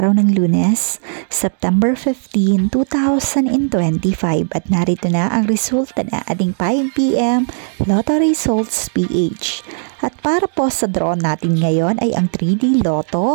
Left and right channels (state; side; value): silent; left; 69 dB below the other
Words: ng Lunes, September 15, 2025 at narito na ang resulta na ating 5 p.m. Lotto Results PH. At para po sa draw natin ngayon ay ang 3D